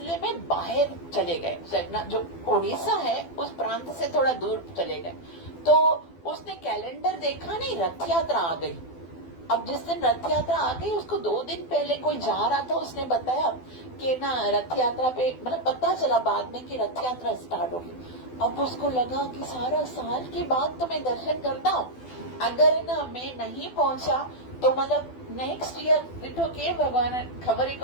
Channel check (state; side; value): late; right; 12 ms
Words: में बाहर चले गए, जगन्नाथ जो उड़ीसा है उस प्रांत से थोड़ा दूर चले गए। तो उसने कैलेंडर देखा नहीं, रथ यात्रा आ गई। अब जिस दिन रथ यात्रा आ गई, उसको 2 दिन पहले कोई जा रहा था, उसने बताया कि ना रथ यात्रा पे, मतलब पता चला बाद में कि रथ यात्रा स्टार्ट होगी। अब उसको लगा कि सारा साल के बाद तो मैं दर्शन करता हूँ, अगर ना मैं नहीं पहुंचा तो मतलब नेक्स्ट ईयर लिटो के भगवान खबर ही